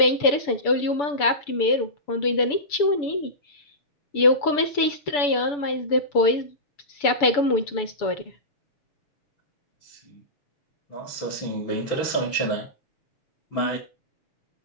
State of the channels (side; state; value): right; late; 6.9 ms